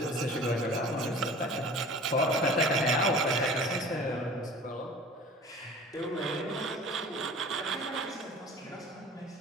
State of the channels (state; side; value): normal; both; correlation 0.42